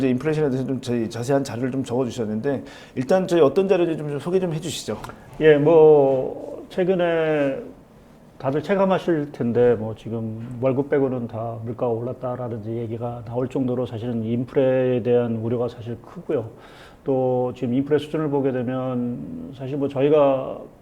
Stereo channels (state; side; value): identical; both; correlation 1.00